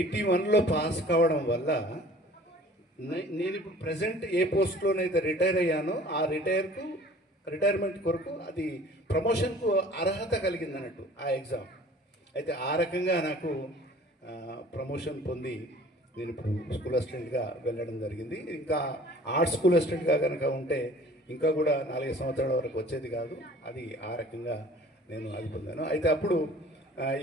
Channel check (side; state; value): both; normal; correlation 0.49